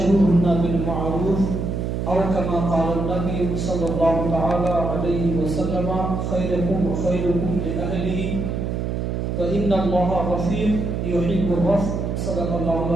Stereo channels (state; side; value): noise; right; hum, 2 dB below the sound